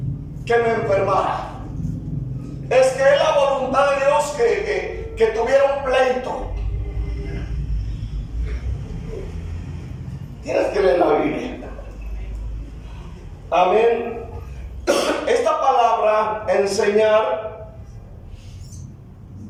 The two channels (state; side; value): identical; both; correlation 1.00